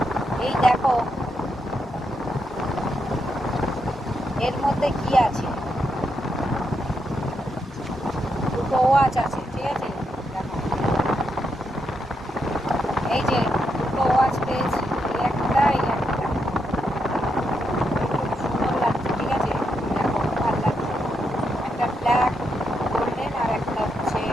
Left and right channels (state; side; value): normal; both; correlation 0.81